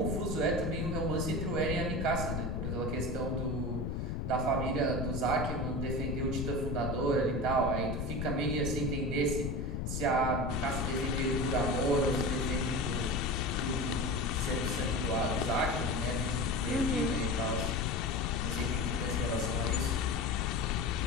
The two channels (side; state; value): left; noise; rumble, 1 dB below the sound